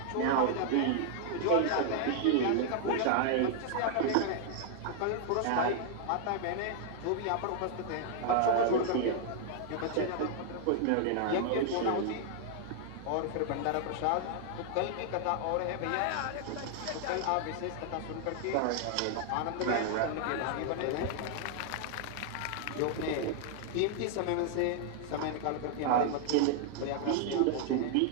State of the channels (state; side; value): different; both; correlation 0.00